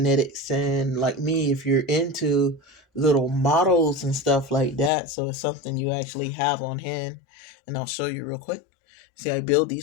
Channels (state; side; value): drops out; right; at 4.9 s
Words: sand like me, if you're into little models and stuff like that, so it's something you actually have on hand, and I'll show you real quick. See, I build